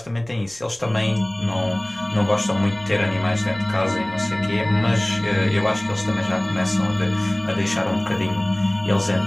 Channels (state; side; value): noise; right; rumble, 27 dB below the sound